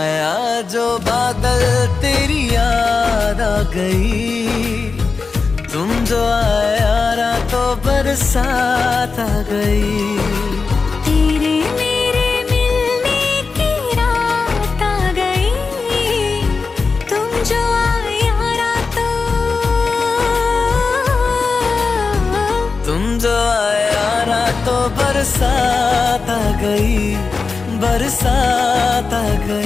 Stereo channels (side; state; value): right; quieter; 4.5 dB